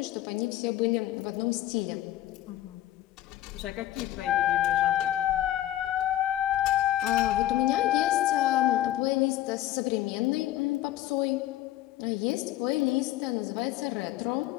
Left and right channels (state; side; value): quieter; right; 13.7 dB